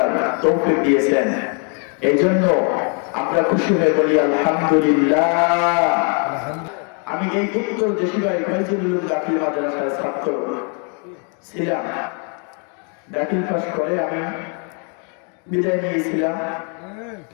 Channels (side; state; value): right; quieter; 39.1 dB